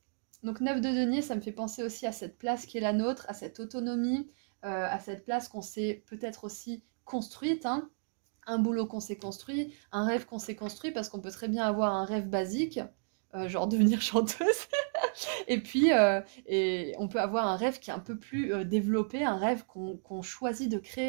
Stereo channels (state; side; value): silent; left; digital silence